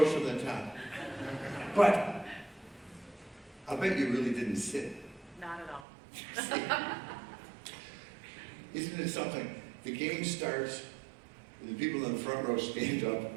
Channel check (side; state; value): left; drops out; at 5.9 s